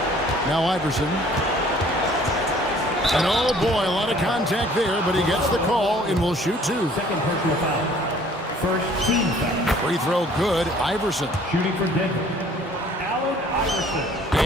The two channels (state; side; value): normal; both; correlation 0.55